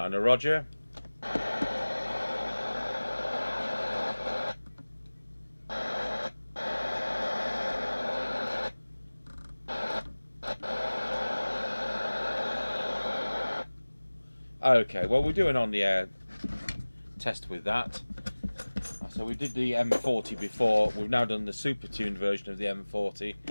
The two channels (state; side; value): inverted; both; correlation -1.00